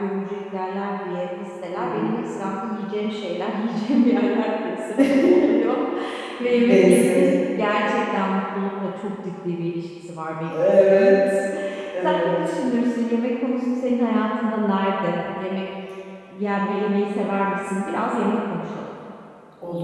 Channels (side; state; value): both; identical; correlation 1.00